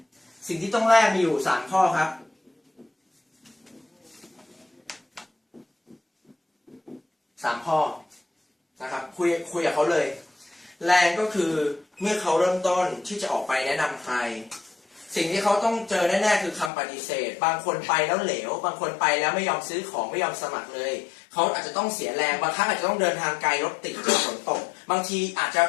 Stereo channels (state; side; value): drops out; right; at 16.7 s